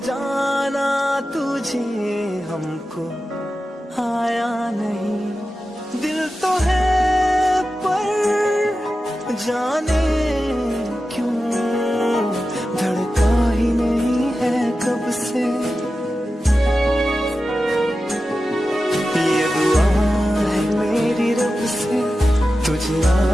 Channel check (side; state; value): both; normal; correlation 0.93